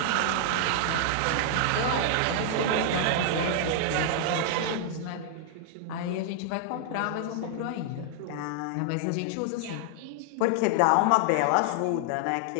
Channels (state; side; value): different; both; correlation 0.00